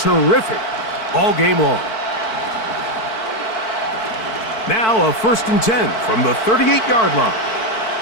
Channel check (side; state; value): right; late; 4.5 ms